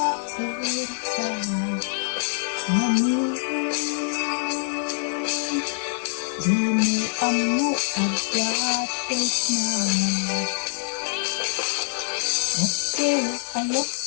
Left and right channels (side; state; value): right; silent; 62 dB below the other